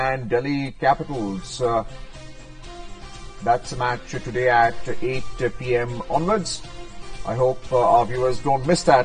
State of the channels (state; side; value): identical; both; correlation 1.00